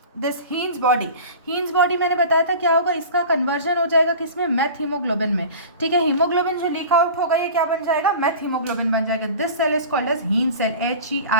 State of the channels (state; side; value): inverted; both; correlation -0.38